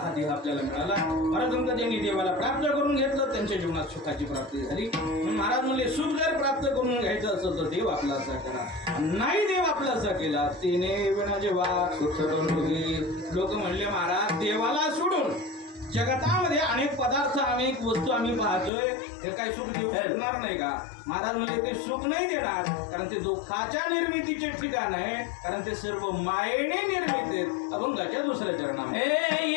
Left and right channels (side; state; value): right; drops out; at 18.7 s